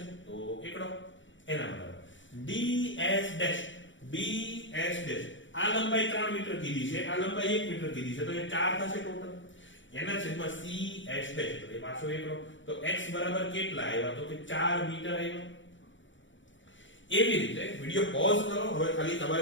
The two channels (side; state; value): right; late; 0.55 ms